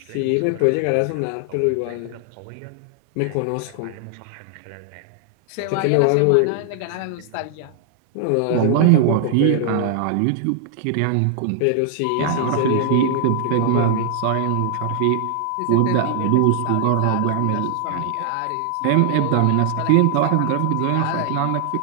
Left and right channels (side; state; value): both; different; correlation 0.00